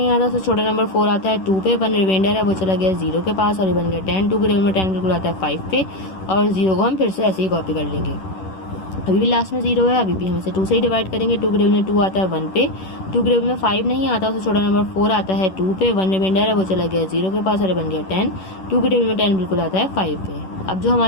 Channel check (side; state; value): right; late; 11 ms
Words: आता, तो छोटा नंबर 4 आता है 2 पे। 1 रिमाइंडर है वो चला गया 0 के पास और ये बन गया 10। 2 के टेबल में 10 बिल्कुल आता है 5 पे, और 0 को हम फिर से ऐसे ही कॉपी कर लेंगे। अभी भी लास्ट में 0 है, अभी भी हम इसे 2 से ही डिवाइड करेंगे। 2 के टेबल में 2 आता है 1 पे। 2 के टेबल में 5 नहीं आता, तो छोटा नंबर 4 आता है 2 पे। 1 रिमाइंडर है वो चला गया 0 के पास और ये बन गया 10। 2 के टेबल में 10 बिल्कुल आता है 5 पे। अब जो